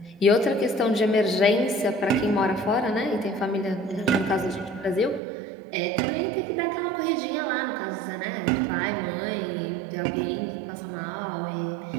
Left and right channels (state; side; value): drops out; left; at 5.2 s